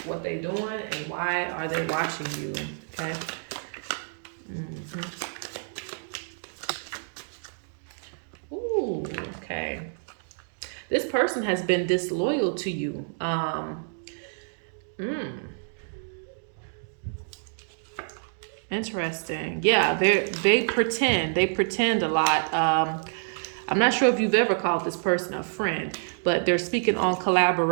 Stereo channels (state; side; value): silent; left; digital silence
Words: what they doing and why are they watching you, okay? Okay. This person has been disloyal to you. Interesting. Yeah, they pretend a lot. I'm not sure if you've ever called this person a friend, but they're speaking on